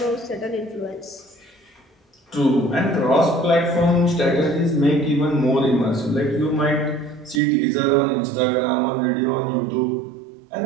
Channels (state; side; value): drops out; left; at 7.4 s